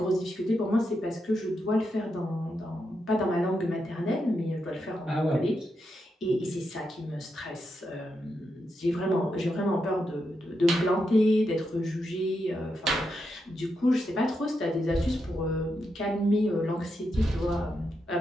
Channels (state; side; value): normal; both; correlation 0.84